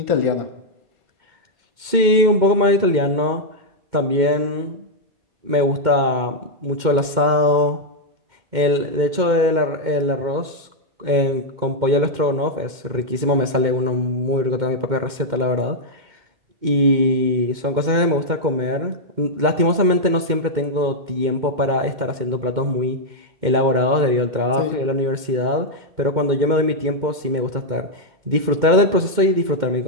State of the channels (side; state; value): left; late; 2.1 ms